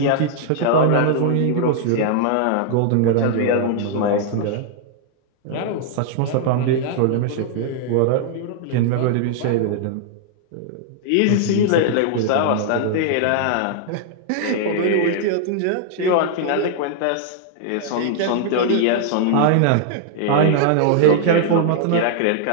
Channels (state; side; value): different; both; correlation -0.01